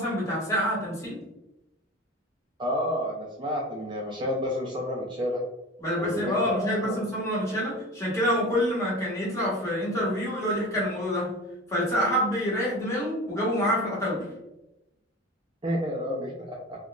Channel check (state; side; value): normal; both; correlation 0.33